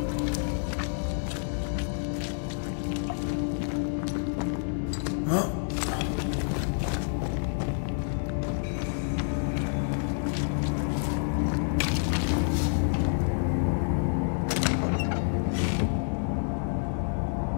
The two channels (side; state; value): right; silent; digital silence